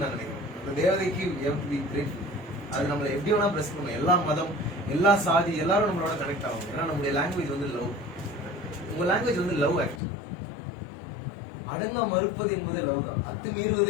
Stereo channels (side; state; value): right; drops out; at 10.0 s